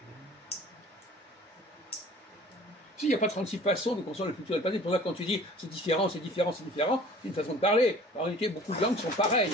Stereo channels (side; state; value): both; normal; correlation 0.47